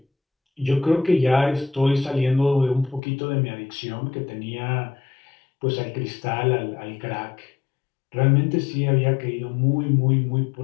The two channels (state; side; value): drops out; right; at 3.0 s